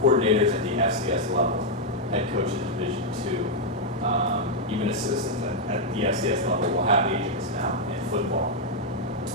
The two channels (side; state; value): both; normal; correlation -0.01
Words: coordinators at the FCS level, head coaches Division II, even assistants at the FCS level will have agents now in football.